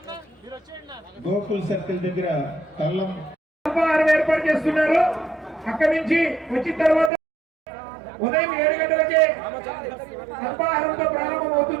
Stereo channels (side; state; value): left; drops out; at 7.1 s